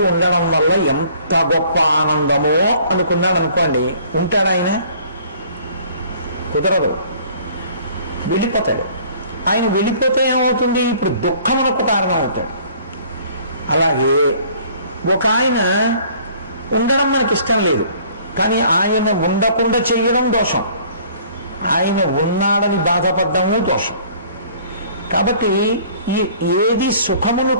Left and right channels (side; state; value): both; inverted; correlation -0.54